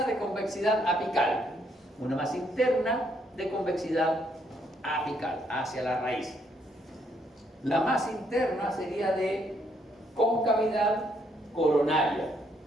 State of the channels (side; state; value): both; normal; correlation 0.72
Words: de convexidad apical. Una más interna de convexidad apical, hacia la raíz. La más interna sería de concavidad coronaria.